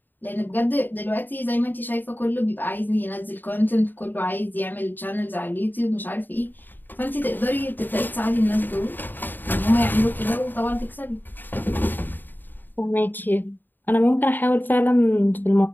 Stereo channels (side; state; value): right; late; 0.091 ms